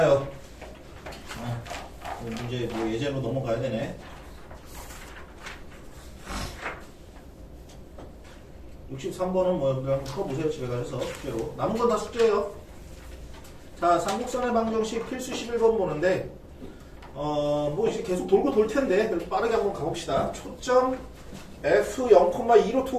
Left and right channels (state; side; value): identical; both; correlation 1.00